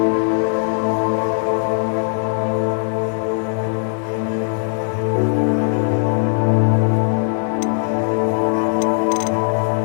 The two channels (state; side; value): silent; right; digital silence